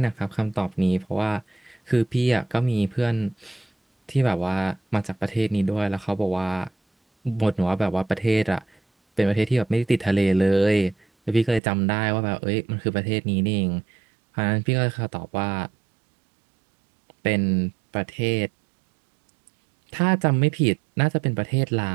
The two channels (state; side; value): drops out; left; at 11.6 s